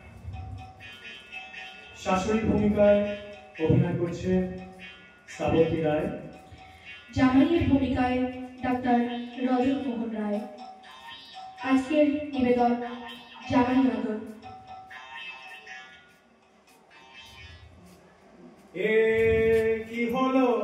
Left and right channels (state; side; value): identical; both; correlation 1.00